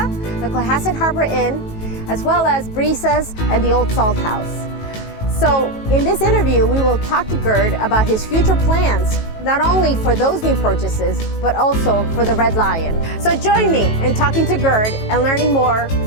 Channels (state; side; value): late; right; 18 ms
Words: the Cohasset Harbor Inn, as well as Brisas and the Olde Salt House. So in this interview, we will talk to Gerd about his future plans, not only for those new purchases, but also for the Red Lion. So join me in talking to Gerd and learning more